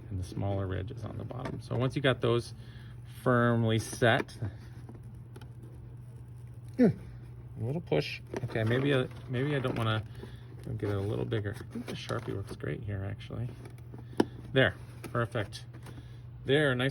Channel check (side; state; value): both; identical; correlation 1.00